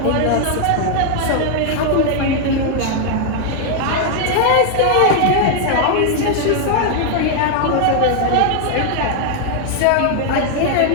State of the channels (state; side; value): different; both; correlation 0.00